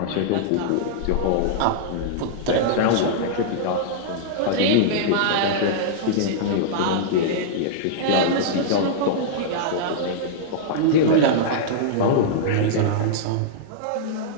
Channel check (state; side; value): different; both; correlation -0.02